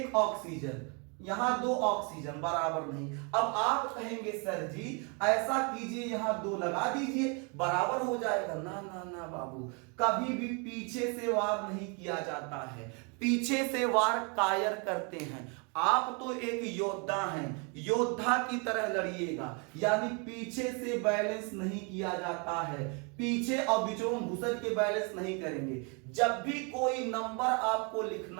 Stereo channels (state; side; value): quieter; left; 34.1 dB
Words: ऑक्सीजन, यहां 2 ऑक्सीजन, बराबर नहीं। अब आप कहेंगे सर जी ऐसा कीजिए, यहां 2 लगा दीजिए, बराबर हो जाएगा। ना ना ना बाबू, कभी भी पीछे से वार नहीं किया जाता है। पीछे से वार कायर करते हैं। आप तो एक योद्धा हैं, योद्धा की तरह लड़िएगा, यानी पीछे से बैलेंस नहीं किया जाता है। पीछे और बीचों में घुसर के बैलेंस नहीं करेंगे। जब भी कोई नंबर आपको